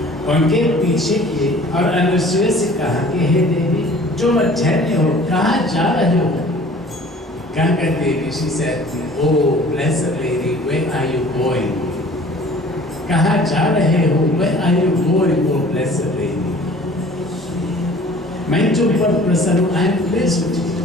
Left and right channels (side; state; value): both; normal; correlation 0.49